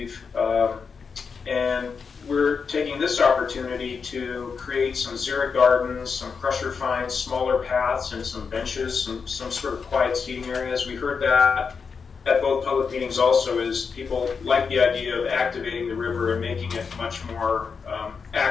and we're taking this opportunity to create some xeric gardens, some crusher finds, smaller paths, and some benches, some sort of quiet seating areas. We heard that at both public meetings also, is people like the idea of activating the river and making it much more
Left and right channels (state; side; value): quieter; right; 5.6 dB